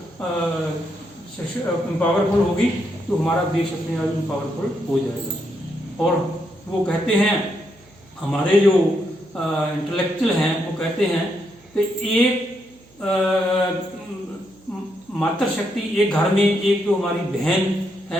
पावरफुल होगी तो हमारा देश अपने आप पावरफुल हो जाएगा। और वो कहते हैं, हमारे जो इंटेलेक्चुअल हैं वो कहते हैं कि एक मातृ शक्ति एक घर में एक जो हमारी बहन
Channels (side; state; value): right; noise; hum, 29 dB below the sound